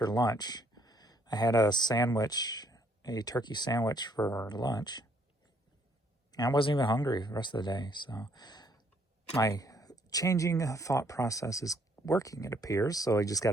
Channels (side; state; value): both; normal; correlation 0.67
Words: lunch. I had a sandwich, a turkey sandwich for lunch. And I wasn't even hungry the rest of the day. So my changing thought process is working, it appears. So I just got